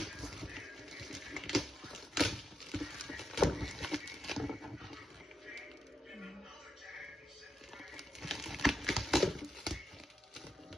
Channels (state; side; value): normal; both; correlation 0.84